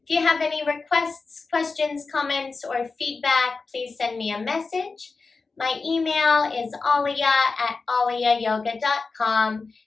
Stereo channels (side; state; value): right; quieter; 4.2 dB